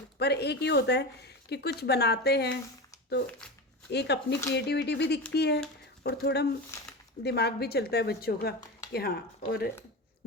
पर एक ही होता है कि कुछ बनाते हैं तो एक अपनी क्रिएटिविटी भी दिखती है और थोड़ा दिमाग भी चलता है बच्चों का कि हाँ। और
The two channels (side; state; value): both; normal; correlation 0.24